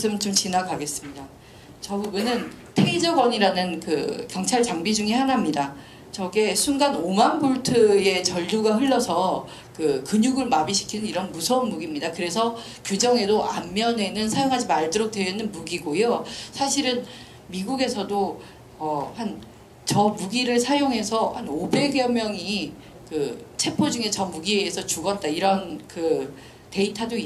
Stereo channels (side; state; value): both; identical; correlation 1.00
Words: 좀 지나가겠습니다. 저 부분은 테이저건이라는 경찰 장비 중에 하나입니다. 저게 순간 5만 볼트의 전류가 흘러서 근육을 마비시키는 이런 무서운 무기입니다. 그래서 규정에도 앞면에는 사용하지 말도록 되어 있는 무기고요. 사실은 미국에서도 저 무기를 사용해서 한 500여 명이 체포 중에 저 무기에 의해서 죽었다, 이런 데이터도